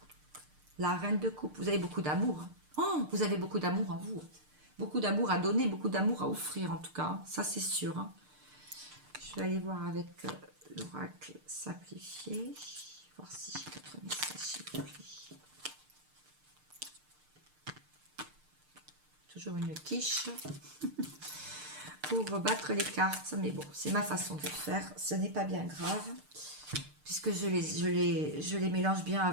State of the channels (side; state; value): left; late; 6.6 ms